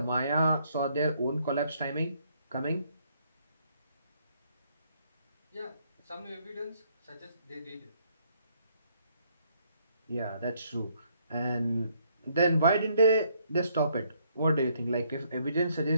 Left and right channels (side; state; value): both; inverted; correlation -0.68